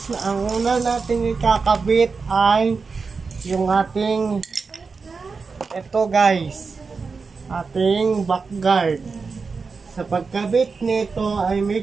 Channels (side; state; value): left; quieter; 4.7 dB